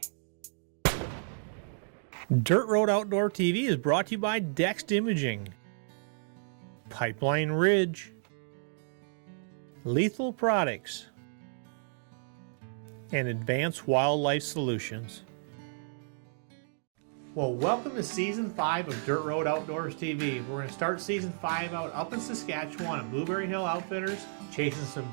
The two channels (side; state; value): left; silent; digital silence